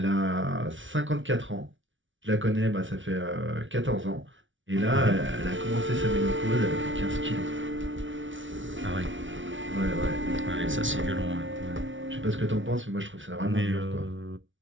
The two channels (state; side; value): late; left; 0.56 ms